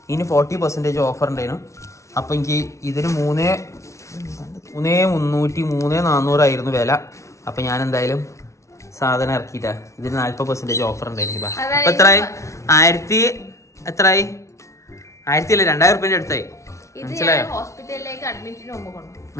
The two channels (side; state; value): right; late; 0.14 ms